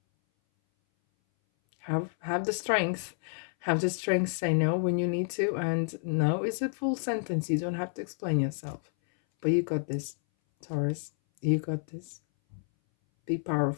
Have the strength. Have the strength say no when you need to. And no is a full sentence. You don't have to explain yourself. But you got this, Taurus. You got this. Be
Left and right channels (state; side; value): silent; right; 58 dB below the other